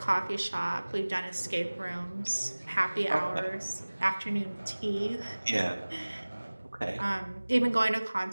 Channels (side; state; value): both; inverted; correlation -1.00